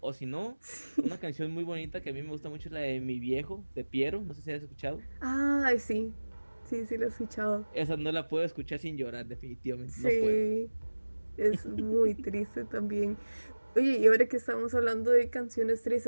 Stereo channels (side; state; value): both; inverted; correlation -1.00